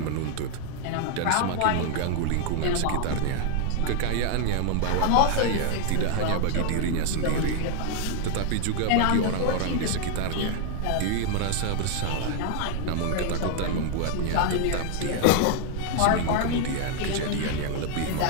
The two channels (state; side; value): different; both; correlation 0.00